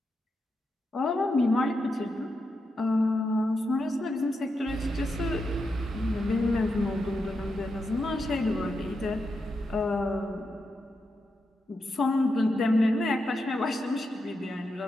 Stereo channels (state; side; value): normal; both; correlation 0.86